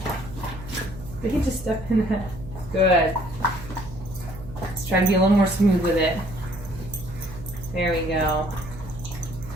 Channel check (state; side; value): noise; right; hum, 13 dB below the sound